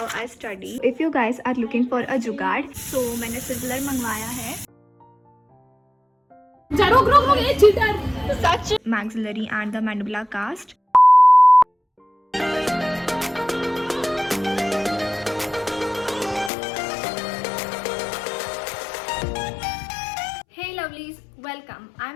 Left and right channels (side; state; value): right; drops out; at 16.5 s